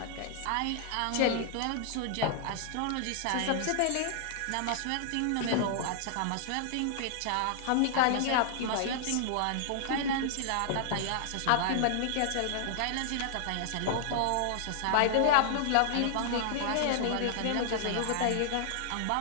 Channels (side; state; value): both; different; correlation -0.01